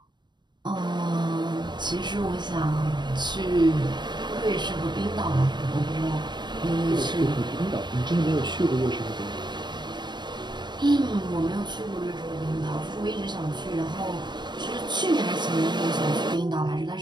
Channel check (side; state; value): left; late; 0.22 ms